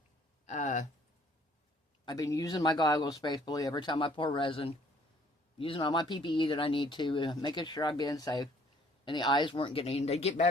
I've been using my goggles faithfully every time I pour resin, using all my PPE that I need to, making sure I'm being safe, and the eyes weren't getting, they'd get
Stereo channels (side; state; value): both; normal; correlation 0.59